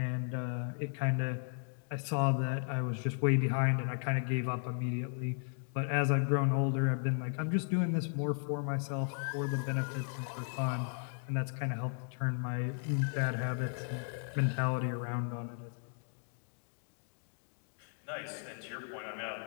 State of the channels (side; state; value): right; silent; 54 dB below the other